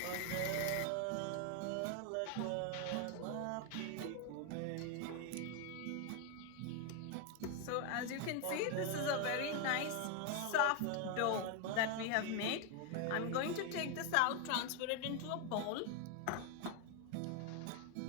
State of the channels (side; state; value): both; different; correlation 0.01